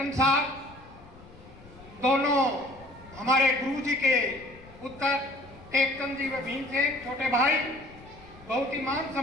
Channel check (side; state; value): left; noise; rumble, 21 dB below the sound